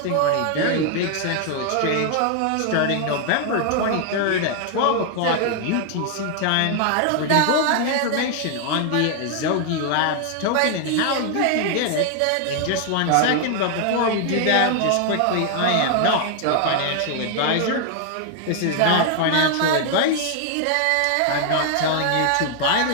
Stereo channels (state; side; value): different; both; correlation 0.00